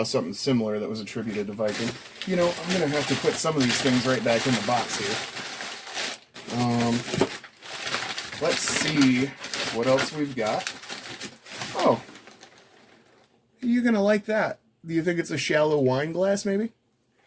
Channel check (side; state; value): both; identical; correlation 1.00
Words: something similar that was attributed to Viking. You know, I'm going to have to put some of these things right back in the box here. Let's see what else we've got. Oh, you're gonna like that. Do you think it's a shallow wine glass, maybe?